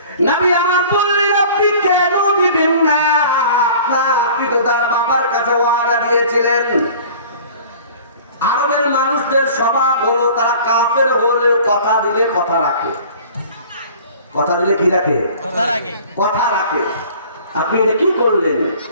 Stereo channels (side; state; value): both; inverted; correlation -0.46